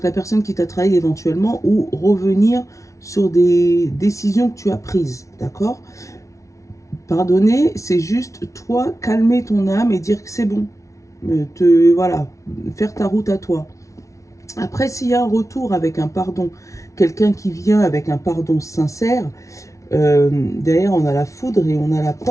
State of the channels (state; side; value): late; right; 0.15 ms